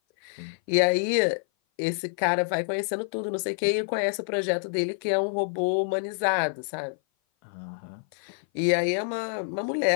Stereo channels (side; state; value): right; silent; 56 dB below the other